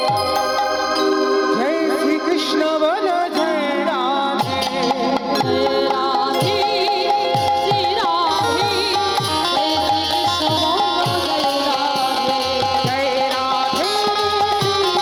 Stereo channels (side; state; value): both; identical; correlation 1.00